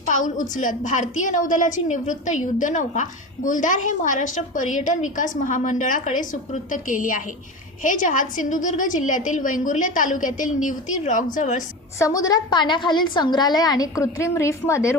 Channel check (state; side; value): normal; both; correlation 0.27